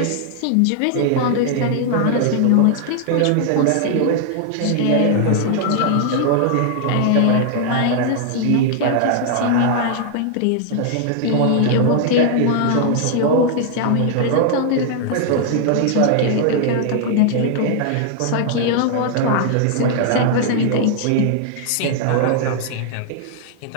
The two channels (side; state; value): both; different; correlation 0.00